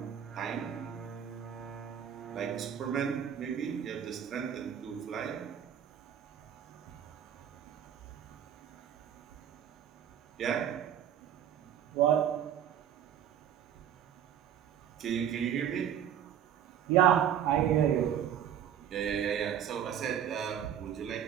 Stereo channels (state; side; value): quieter; left; 9.5 dB